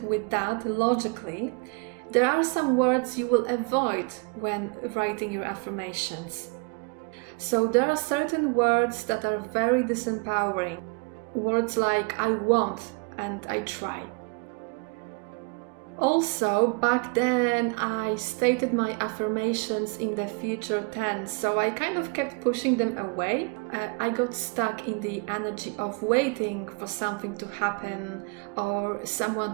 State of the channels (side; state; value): left; quieter; 32.6 dB